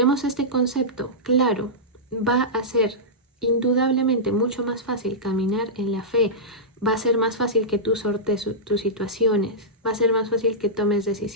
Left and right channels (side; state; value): both; normal; correlation -0.13